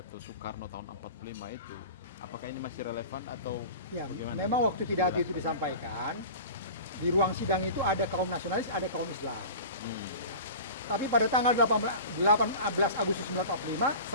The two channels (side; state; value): both; inverted; correlation -0.36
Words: Soekarno tahun 45 itu, apakah ini masih relevan atau Ya, bagaimana? memang waktu pidato itu disampaikan, di ruang sidang itu ada kaum nasionalis, ada kaum Islam. Tapi pada tanggal 18 Agustus 1945